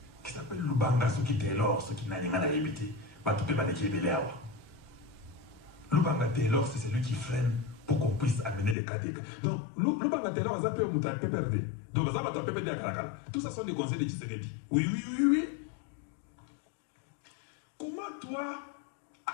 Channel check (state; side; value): drops out; right; at 8.8 s